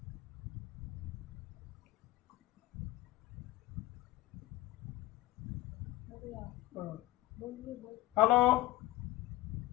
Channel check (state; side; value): quieter; right; 16.9 dB